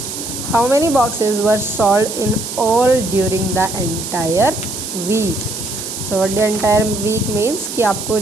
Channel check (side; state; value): right; noise; hiss, 7 dB below the sound